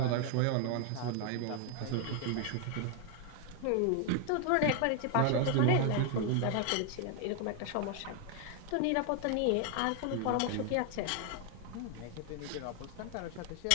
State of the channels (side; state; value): both; different; correlation 0.01